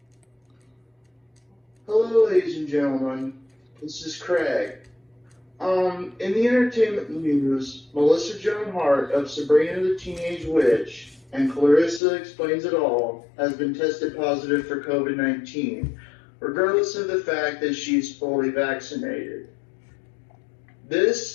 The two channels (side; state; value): right; drops out; at 12.0 s